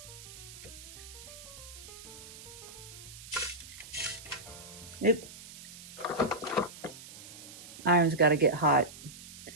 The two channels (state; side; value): noise; right; hiss, 15 dB below the sound